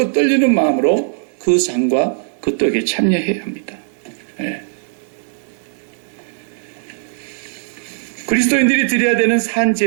떨리는 마음으로 그 상과 그 떡에 참여해야 합니다. 예. 그리스도인들이 드려야 되는 산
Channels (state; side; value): silent; left; 67 dB below the other